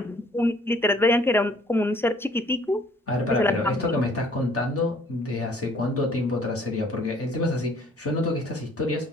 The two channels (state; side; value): normal; both; correlation 0.58